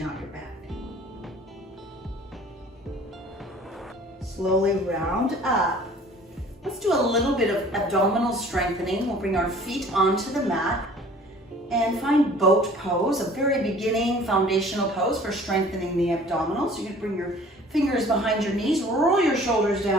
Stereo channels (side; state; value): both; normal; correlation 0.49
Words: out your back. Slowly round up. Let's do a little bit of abdominal strengthening. We'll bring our feet onto the mat and find boat pose, a very beginning foundational pose for strengthening the abdominals. You can bring your fingers behind your knees, roll your shoulders